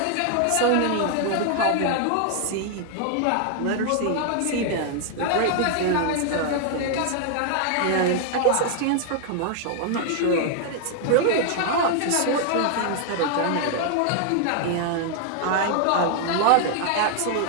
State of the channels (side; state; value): both; different; correlation 0.00